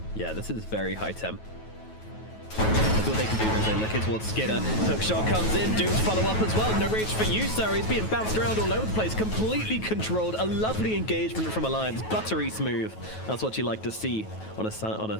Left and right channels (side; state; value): right; late; 9.3 ms